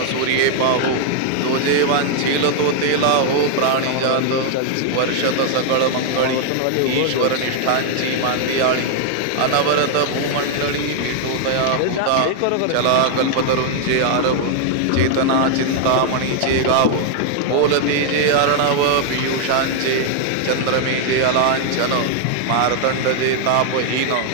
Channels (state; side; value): different; both; correlation 0.00